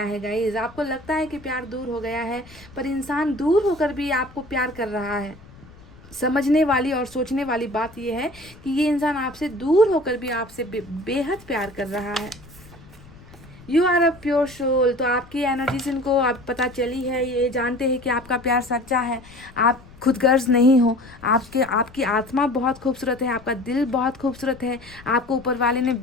है गाइज, आपको लगता है कि प्यार दूर हो गया है, पर इंसान दूर होकर भी आपको प्यार कर रहा है। समझने वाली और सोचने वाली बात यह है कि ये इंसान आपसे दूर होकर भी आपसे बेहद प्यार कर रहा है। You are a pure soul. तो आपकी एनर्जी से इनको आप पता चली है, ये जानते हैं कि आपका प्यार सच्चा है, आप खुदगर्ज नहीं हो, आपकी आत्मा बहुत खूबसूरत है, आपका दिल बहुत खूबसूरत है, आपको ऊपर वाले ने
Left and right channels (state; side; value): noise; left; rumble, 22 dB below the sound